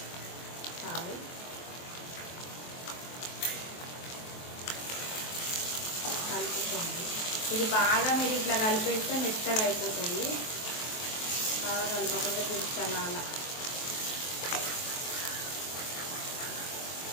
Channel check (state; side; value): late; right; 23 ms